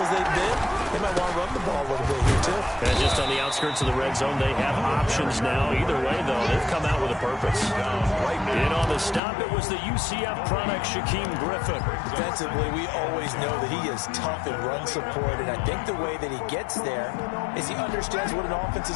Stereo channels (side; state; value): right; drops out; at 9.2 s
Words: they've been, they might want to run the ball a little bit here, too. And just on the outskirts of the red zone, they have options now. Either way, though, they've come out with a purpose. In on the stop, it was the UCF product, Shaquem Griffin. Defensively, we always know that he is tough in run support, and I think the way that he gets there is he understands what an offense